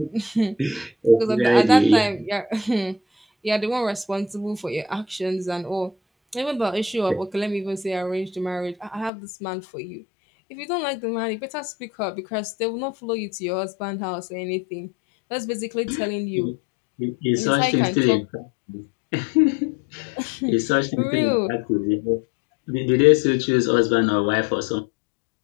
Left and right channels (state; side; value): drops out; right; at 9.1 s